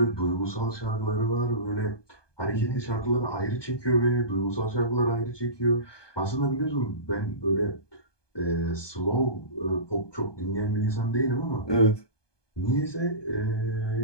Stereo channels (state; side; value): late; right; 1.2 ms